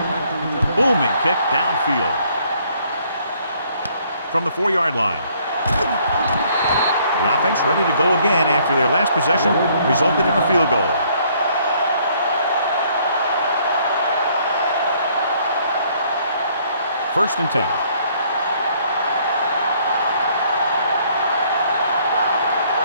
Booming kick downfield. From the 4-yard line. The offense ready to go again after their last possession resulted in a field goal. First and 10.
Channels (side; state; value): both; inverted; correlation -0.64